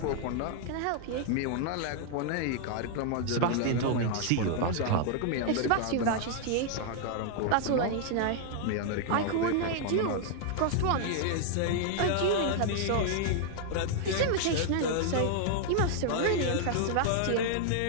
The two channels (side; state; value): both; different; correlation 0.00